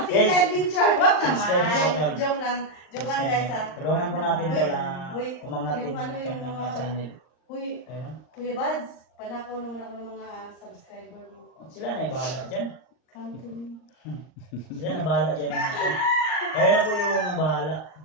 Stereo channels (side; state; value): right; late; 39 ms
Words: Yes. Adventure. Wag Subscribe niyo po, naman. Tol. Joke lang. Joke lang guys ha. Tulungan po natin to lang Uy, umangat din yung ano, yung ng mga mga- channel. Uy, Ayun. Kuya Buds, panakaw naman ako ng mga subscriber mo. Sila na bahala dyan. Come to me. Sila na bahala dyan ng atin. Kaya na po yung bahala.